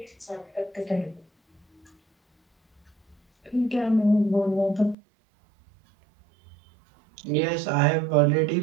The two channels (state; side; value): drops out; left; at 5.0 s